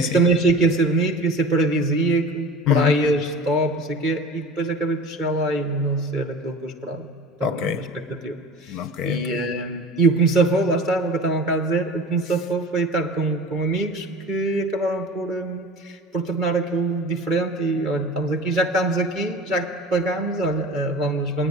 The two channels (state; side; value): normal; both; correlation 0.37